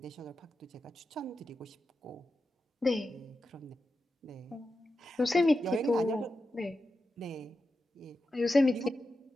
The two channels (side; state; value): both; normal; correlation 0.90